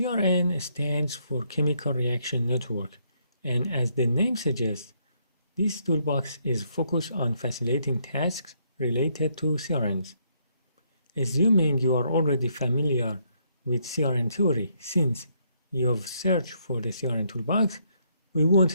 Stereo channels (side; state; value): both; inverted; correlation -0.73